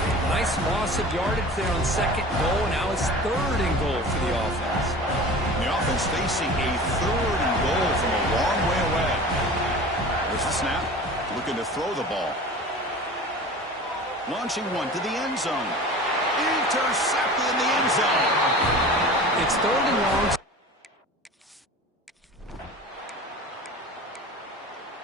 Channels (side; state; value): both; normal; correlation 0.38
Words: Nice loss of yardage there on second goal. Now it's third and goal for the offense. The offense facing a third and goal from a long way away. There's the snap. Looking to throw the ball. Launching one to the end zone. Intercepted in the end zone. It's third and long.